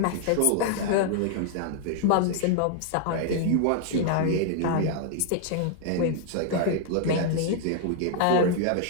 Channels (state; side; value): different; both; correlation 0.00